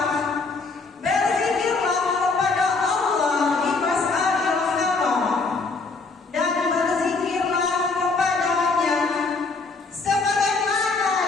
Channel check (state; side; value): quieter; right; 4.0 dB